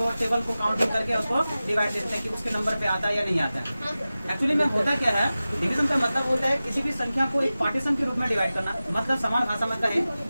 टेबल को काउंटिंग करके उसको डिवाइड देते हैं कि उसके नंबर पे आता है या नहीं आता है। एक्चुअली में होता क्या है, डिवीजन का मतलब होता है किसी भी संख्या को एक पार्टीशन के रूप में डिवाइड करना। मतलब समान भाषा में कहें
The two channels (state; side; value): inverted; both; correlation -0.96